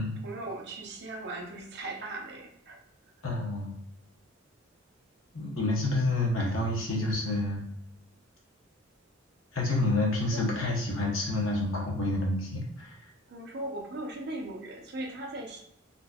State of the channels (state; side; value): normal; both; correlation 0.46